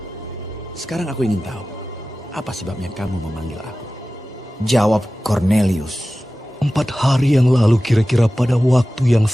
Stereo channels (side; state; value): both; normal; correlation 0.96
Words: Sekarang aku ingin tahu, apa sebabnya kamu memanggil aku?" Jawab Kornelius, 4 hari yang lalu kira-kira pada waktu yang